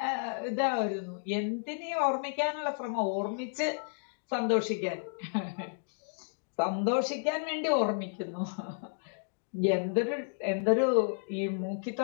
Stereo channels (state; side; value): silent; right; digital silence